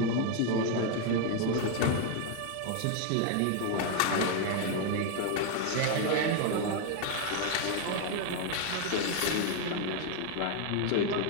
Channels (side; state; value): both; different; correlation 0.01